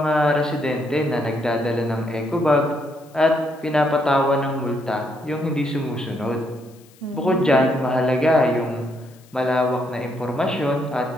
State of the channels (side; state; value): left; noise; hiss, 28 dB below the sound